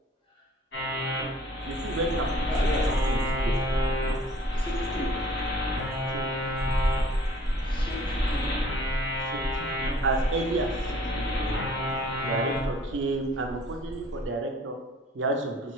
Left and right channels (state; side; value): normal; both; correlation 0.53